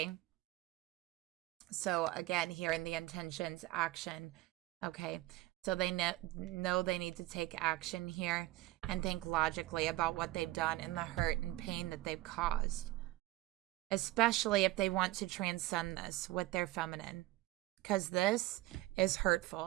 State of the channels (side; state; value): left; quieter; 18.1 dB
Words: So again, here in the intentions, action. Okay. So they know they need to take action here and think logically about what they've done and the hurt and pain that they've caused. Especially if they want to transcend this with their feminine. Because this is